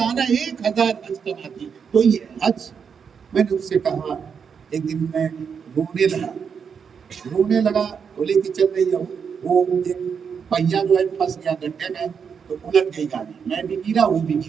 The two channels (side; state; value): left; quieter; 6.6 dB